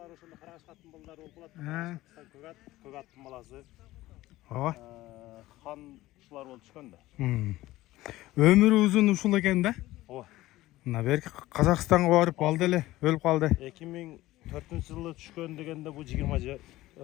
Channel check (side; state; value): right; quieter; 16.9 dB